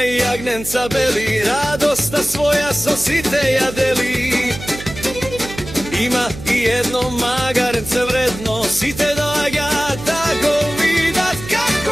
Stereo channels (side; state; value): right; noise; hum, 12 dB below the sound